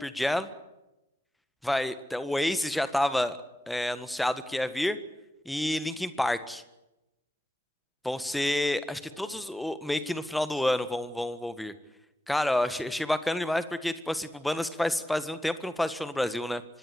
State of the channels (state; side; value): normal; both; correlation 0.93